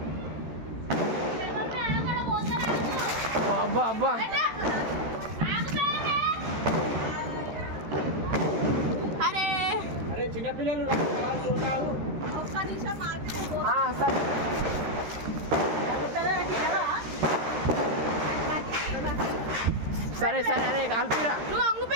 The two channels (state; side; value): late; left; 13 ms